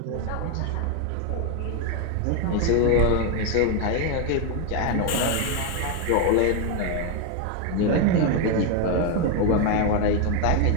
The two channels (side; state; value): both; different; correlation 0.01